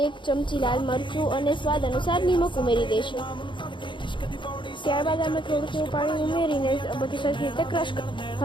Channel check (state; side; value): late; right; 0.23 ms